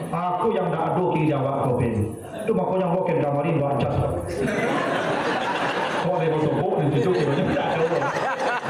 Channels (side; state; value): both; identical; correlation 1.00